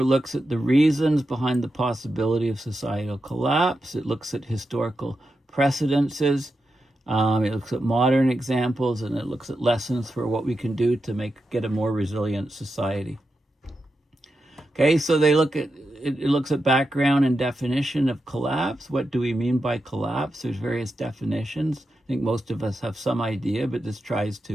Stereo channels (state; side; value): normal; both; correlation 0.88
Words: looks at the reasons behind the possibility of societal collapse. It looks at historical precedences. It looks at modern examples, and it looks at lessons for what we can do to get a more resilient society. Okay, so it looks at background and definition of collapse. What do we mean by collapse? There's various definitions. I think most of us have some idea, but this tries